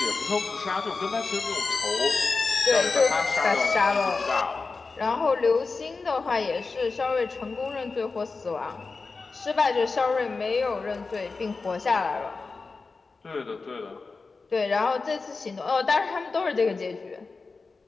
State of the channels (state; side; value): quieter; right; 4.2 dB